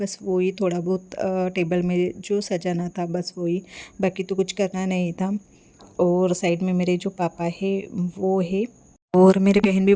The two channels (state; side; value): identical; both; correlation 1.00